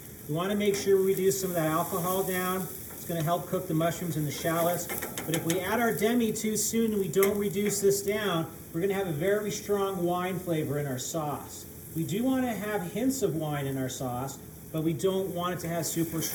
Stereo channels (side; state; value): both; identical; correlation 1.00